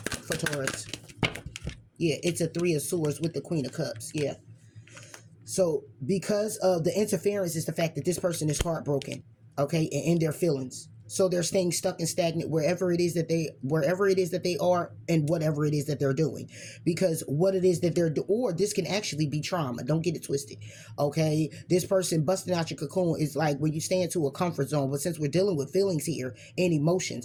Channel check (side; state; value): both; identical; correlation 1.00